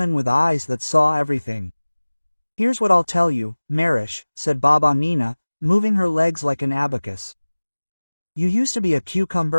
with eyes that saw everything. Here's what I'll tell you, Marish, said Baba Nina, moving her legs like an abacus. You used to be a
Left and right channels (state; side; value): inverted; both; correlation -1.00